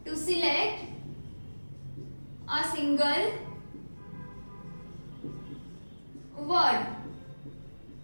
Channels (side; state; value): both; inverted; correlation -1.00